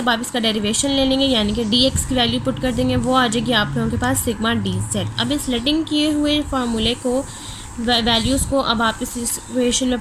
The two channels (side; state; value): both; identical; correlation 1.00